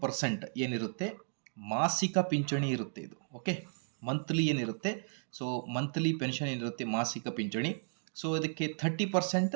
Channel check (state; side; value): silent; left; digital silence